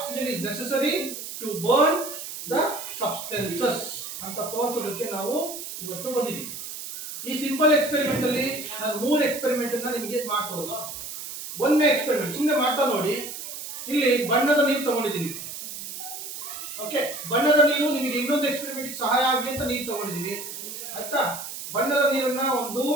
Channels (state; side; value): noise; right; hiss, 9 dB below the sound